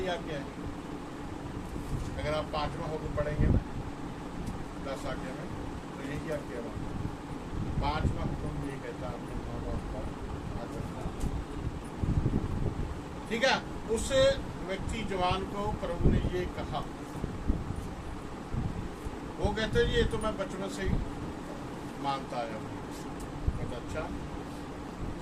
आज्ञा है। अगर आप 5वां होकर पढ़ेंगे ना 10 आज्ञा में, तो यही आज्ञा है। 5वां हुक्म ये कहता है अपने माँ बाप का आदर। ठीक है। उस व्यक्ति जवान को प्रभु ने ये कहा, वो कहते ये तो मैं बचपन से ही मानता आया हूँ। कहता अच्छा।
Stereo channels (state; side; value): identical; both; correlation 1.00